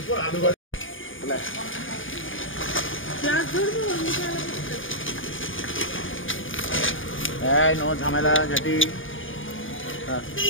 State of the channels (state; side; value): late; right; 0.57 ms